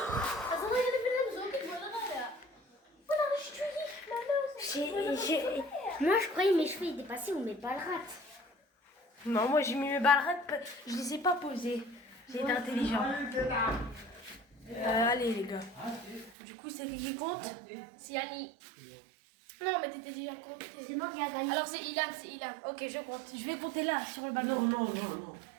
Moi je croyais mes cheveux ils dépassaient ou mes balles rates. Non, moi j'ai mis mes balles, je les ai pas posées. J'ai été intelligent. Allez les gars. Du coup, c'est qui compte? C'est Yanni. Non, mais t'étais déjà compté. C'est moi qui a gagné. Alors c'est Ilan, c'est Ilan. Ok, je compte. Je vais compter là, sur le balcon. Non, non, non, non.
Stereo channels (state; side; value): drops out; left; at 16.3 s